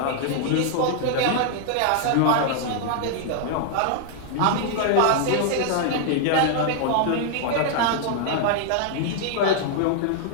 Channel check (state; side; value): different; both; correlation 0.00